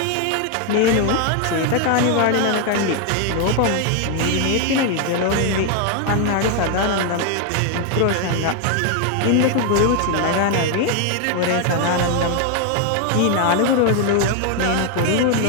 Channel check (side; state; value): both; different; correlation 0.01